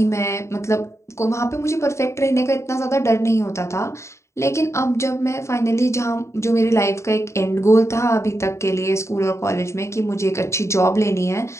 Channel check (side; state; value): right; late; 0.14 ms